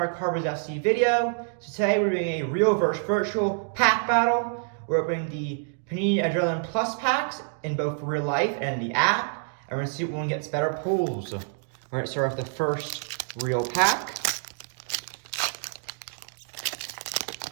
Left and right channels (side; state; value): left; silent; digital silence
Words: Carbos FC video. So today we're doing a real versus virtual pack battle. We're opening the Panini Adrenalyn Plus packs in both real life and the app. And we're going to see what one gets better pulls. We're going to start with the first real pack.